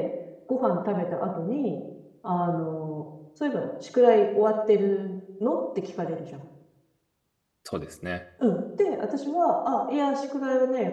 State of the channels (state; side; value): identical; both; correlation 1.00